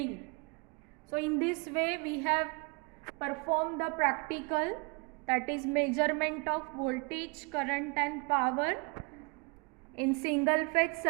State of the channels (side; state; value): left; quieter; 30.7 dB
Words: So in this way we have performed the practical, that is measurement of voltage, current and power in single phase